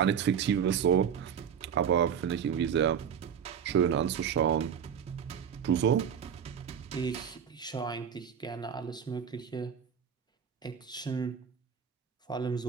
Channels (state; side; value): quieter; left; 7.9 dB